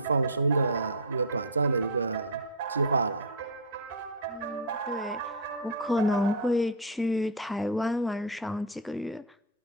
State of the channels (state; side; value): normal; both; correlation -0.01